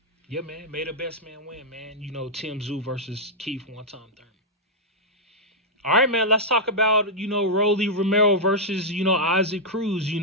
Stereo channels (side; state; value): both; normal; correlation -0.07